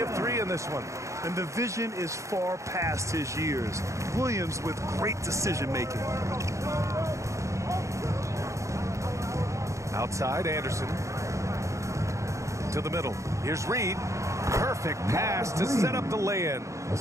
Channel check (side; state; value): left; late; 0.15 ms